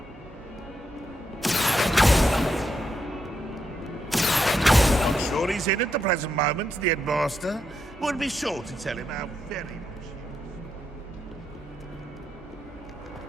I'm sure he's in at the present moment, the headmaster. Would be sure to tell him how very much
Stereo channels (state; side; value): normal; both; correlation 0.81